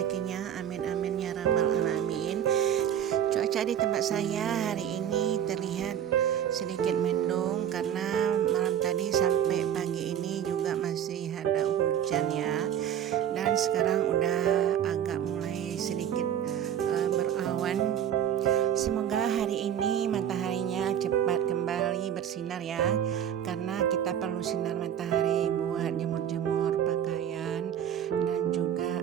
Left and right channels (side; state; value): left; quieter; 9.7 dB